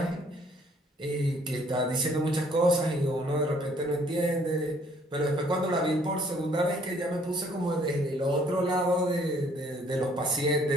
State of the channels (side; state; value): both; normal; correlation 0.61